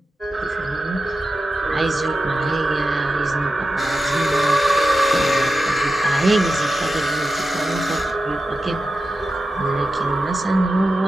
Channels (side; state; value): both; normal; correlation 0.91